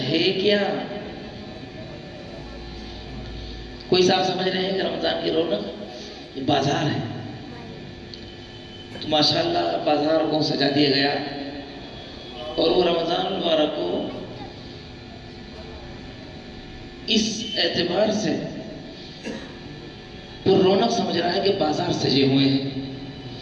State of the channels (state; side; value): identical; both; correlation 1.00